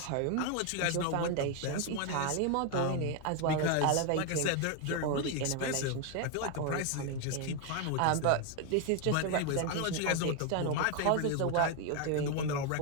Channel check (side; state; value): both; different; correlation 0.01